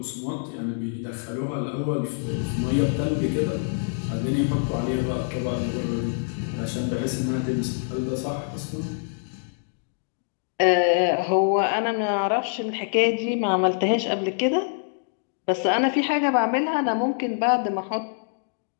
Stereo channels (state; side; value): silent; right; digital silence